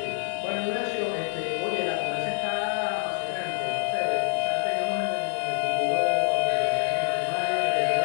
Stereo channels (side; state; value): right; silent; 61 dB below the other